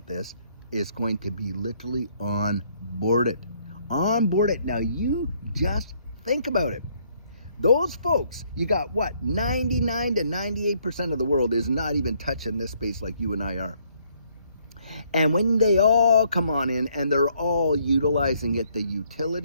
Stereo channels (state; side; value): inverted; both; correlation -0.68